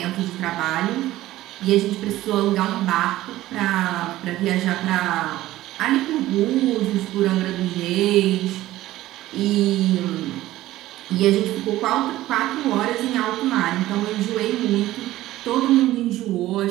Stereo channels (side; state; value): left; quieter; 15.5 dB